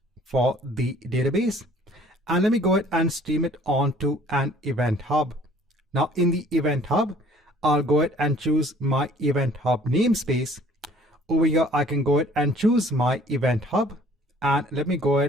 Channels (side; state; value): both; normal; correlation 0.55